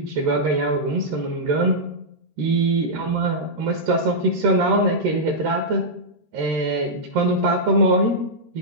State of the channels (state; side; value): late; left; 13 ms